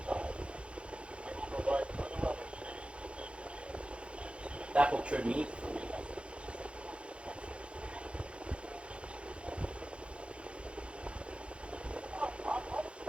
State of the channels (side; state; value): left; late; 0.059 ms